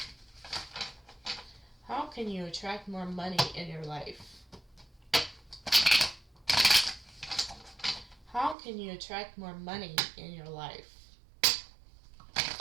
How can you attract more money in your life? How can you attract more money in your life?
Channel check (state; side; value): drops out; left; at 8.6 s